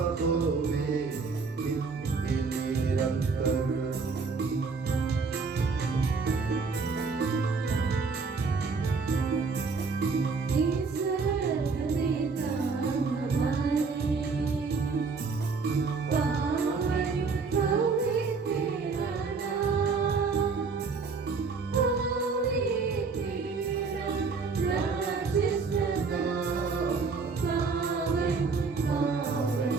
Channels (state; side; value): quieter; left; 4.7 dB